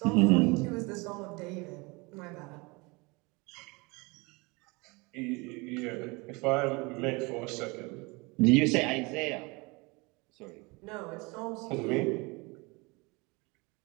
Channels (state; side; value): quieter; left; 26.8 dB